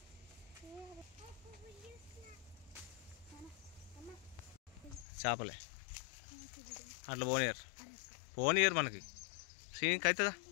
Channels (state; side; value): drops out; right; at 5.1 s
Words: చేపలే అట్లా పోనీయరు మనకి శ్రీనికి అవుతుందా